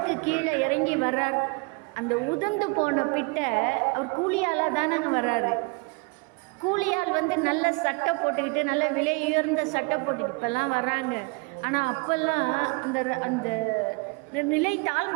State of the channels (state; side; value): quieter; left; 29.9 dB